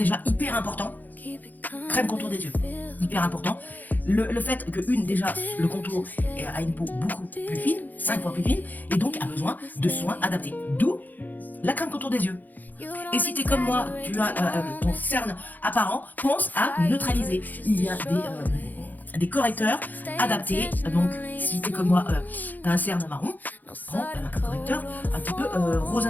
hyper important. Crème contour des yeux. Hyper important. Le fait que déjà, le contour a une peau beaucoup plus fine, 5 fois plus fine, et donc a besoin de soins adaptés. D'où la crème contour des yeux. Et si tu es comme moi, tu as ton cerne apparent, pense à neutraliser. Il y a des correcteurs adaptés. Donc, si tu es comme moi, tu as un cerne marron, prends un correcteur un petit peu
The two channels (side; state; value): right; late; 0.084 ms